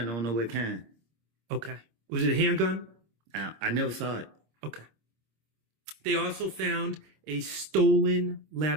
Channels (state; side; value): late; left; 26 ms